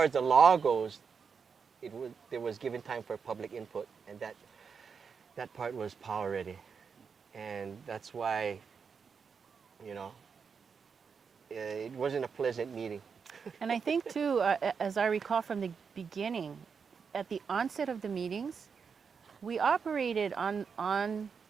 as the law goes, there was given time for public input, and that part was power already. And that's why, you know, it wasn't a pleasant meeting. And I think too, as I recall from the beginning, at the onset of the meetings, we operated on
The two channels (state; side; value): quieter; left; 6.0 dB